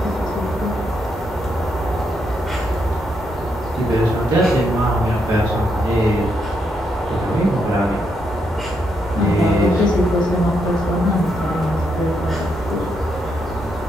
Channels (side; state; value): both; normal; correlation 0.79